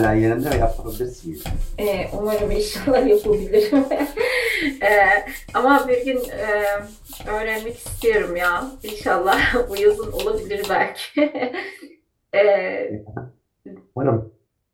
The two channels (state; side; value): identical; both; correlation 1.00